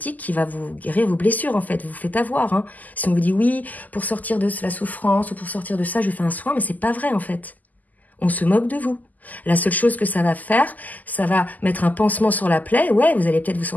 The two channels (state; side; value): late; right; 0.081 ms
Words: qui va vous guérir vos blessures, en fait. Vous vous faites avoir. Hein. Si on vous dit, oui, pour sortir de la souffrance ou pour sortir de ça, je fais un soin, mais c'est pas vrai, en fait. On se moque de vous. La seule chose que ça va faire, ça va mettre un pansement sur la plaie. Ouais, vous allez peut-être vous